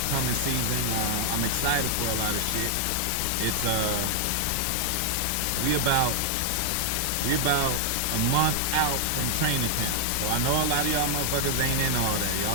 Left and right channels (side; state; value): both; different; correlation -0.01